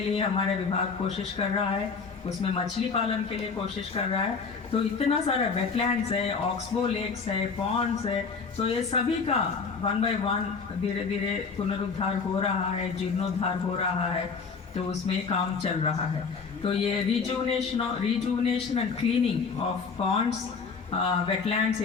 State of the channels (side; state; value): right; quieter; 5.2 dB